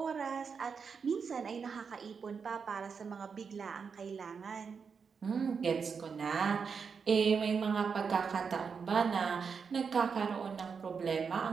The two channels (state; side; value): quieter; left; 5.8 dB